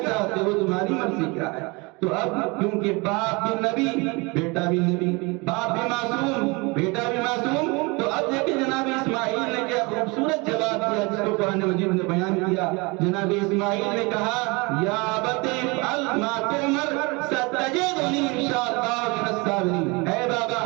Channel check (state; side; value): quieter; left; 27.1 dB